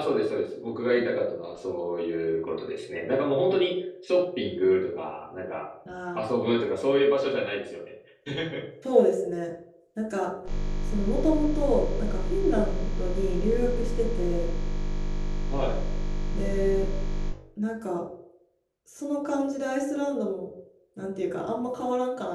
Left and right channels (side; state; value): both; identical; correlation 1.00